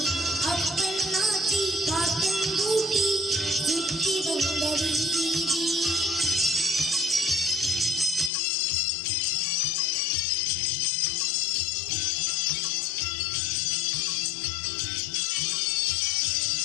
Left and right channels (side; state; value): right; drops out; at 8.3 s